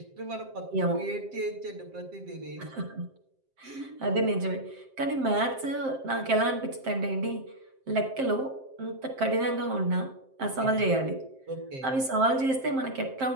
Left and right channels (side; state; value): left; late; 7.6 ms